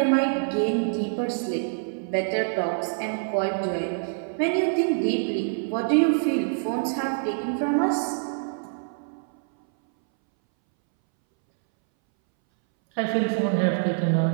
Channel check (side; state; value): left; silent; 61 dB below the other